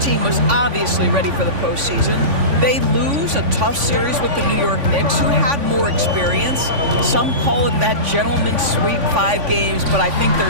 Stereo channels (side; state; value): left; late; 3.5 ms